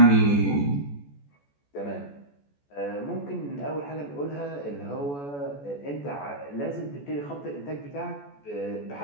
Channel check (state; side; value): late; right; 14 ms